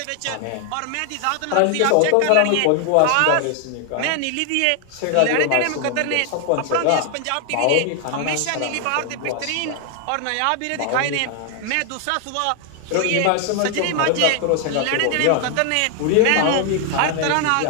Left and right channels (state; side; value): different; both; correlation 0.00